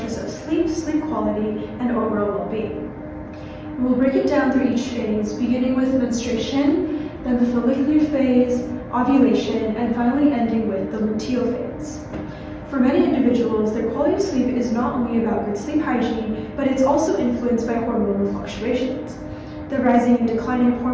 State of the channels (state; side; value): identical; both; correlation 1.00